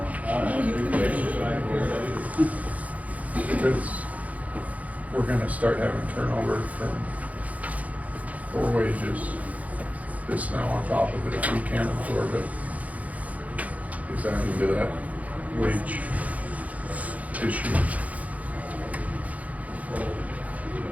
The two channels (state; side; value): late; left; 0.071 ms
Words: Because we're gonna start having turnover for wages. This now on top of it, if we can't absorb it, is that into that wage issue?